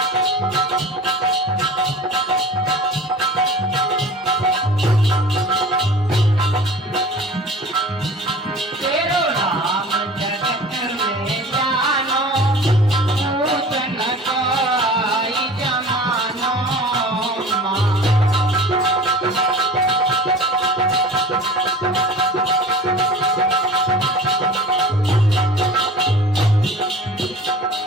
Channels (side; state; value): both; normal; correlation 0.41